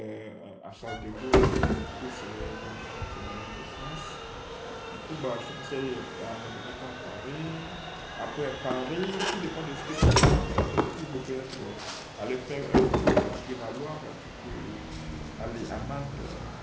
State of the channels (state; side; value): identical; both; correlation 1.00